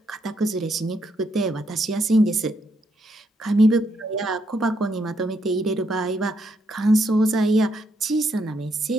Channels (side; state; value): both; normal; correlation 0.76